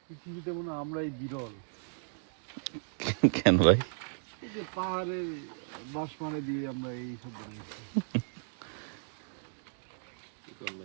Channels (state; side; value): silent; left; digital silence